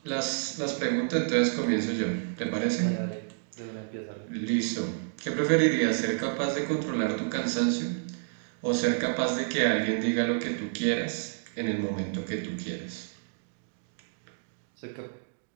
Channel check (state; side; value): silent; left; digital silence